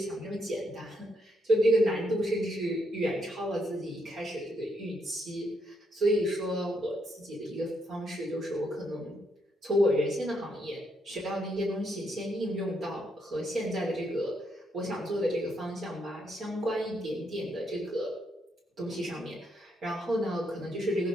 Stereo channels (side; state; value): both; normal; correlation 0.76